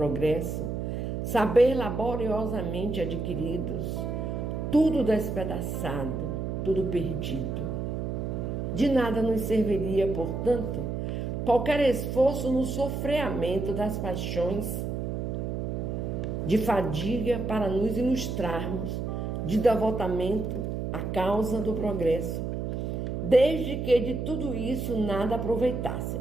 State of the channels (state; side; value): noise; right; hum, 3 dB below the sound